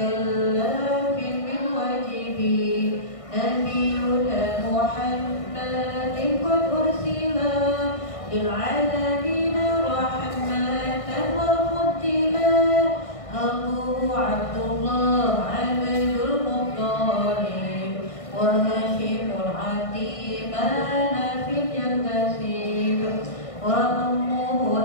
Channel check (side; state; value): right; late; 1.6 ms